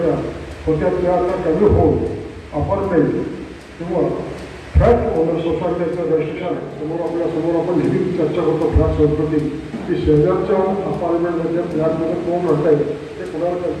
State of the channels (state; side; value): identical; both; correlation 1.00